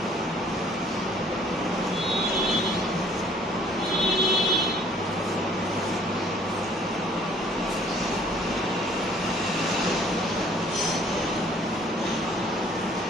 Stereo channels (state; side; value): normal; both; correlation 0.57